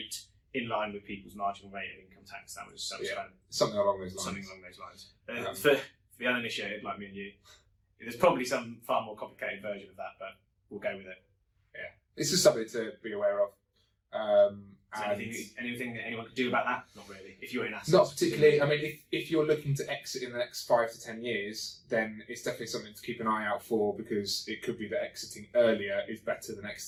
in line with people's marginal rate of income tax. That was something along those lines. Something along those lines. For the uninitiated like me and you, there's probably some far more complicated version of that, but we'll go with it. Yeah, it's just something to be aware of. Anything that anyone could do about that? Not really. If you're in assets, not particularly. I mean, if you're looking to exit in the next 5 to 10 years, then it's definitely something to keep an eye out for, because it could be that exiting earlier is better than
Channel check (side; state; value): both; identical; correlation 1.00